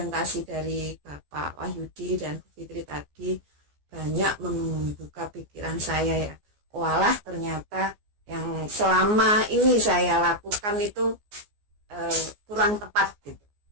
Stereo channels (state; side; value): late; left; 14 ms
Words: dari Bapak Wahyudi dan Bu Fitri tadi, banyak membuka pikiran saya ya. Walah, ternyata yang selama ini saya lakukan itu kurang tepat gitu.